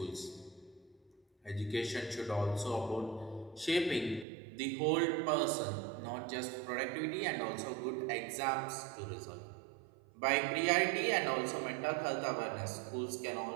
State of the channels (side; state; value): left; drops out; at 4.2 s